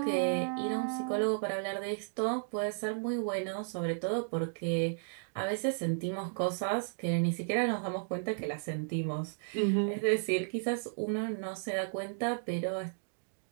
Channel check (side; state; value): left; silent; digital silence